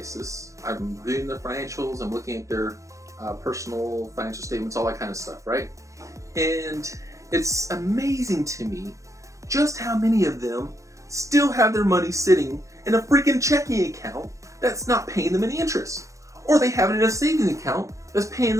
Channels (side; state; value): left; late; 0.15 ms